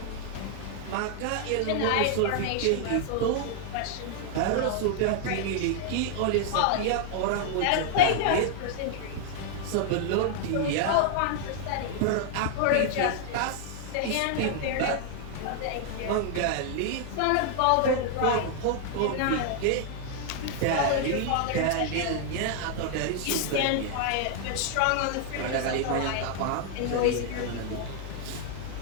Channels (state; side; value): different; both; correlation 0.00